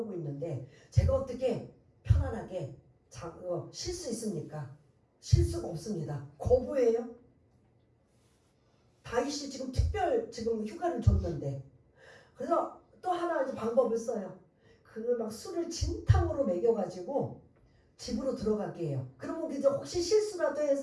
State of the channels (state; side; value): identical; both; correlation 1.00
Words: 있는데 제가 어떻게 편안하게 쉴 수 있습니까? 쉴 수가 없습니다. 거부해요. 다윗이 지금 지금 휴가를 줬는데 그래서 또 하나 이제 방법을 써요. 막 술을 진탕으로 먹여가지고 집으로 들어가게 해요. 그러면 이제 혹시 실수라도